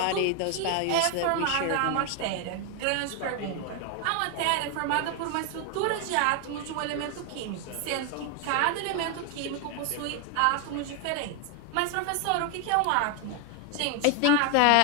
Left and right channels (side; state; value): both; different; correlation 0.01